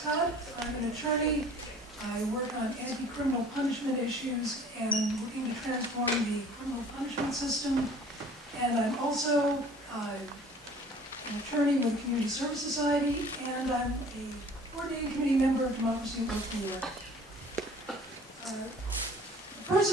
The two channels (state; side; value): normal; both; correlation 0.51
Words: I'm an attorney. I work on anti-criminal punishment issues and looking to transform the criminal punishment system. And I'm also an attorney with the Community Service Society, and I'm a coordinating committee member of Democracy at Work New York. The